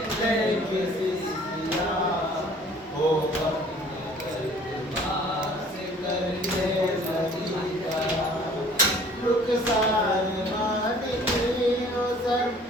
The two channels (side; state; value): both; normal; correlation 0.53